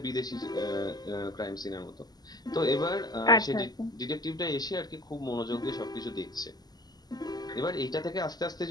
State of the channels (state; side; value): late; right; 0.20 ms